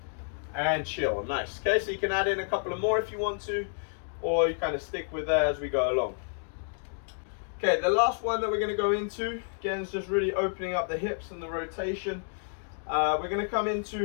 And chill, nice. Okay, so you can add in a couple of more if you want to, or you kind of stick with that as we go along. Okay, the last one that we're going to go into, again, is just really opening up the hips and the rotation. We're going to come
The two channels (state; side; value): silent; right; digital silence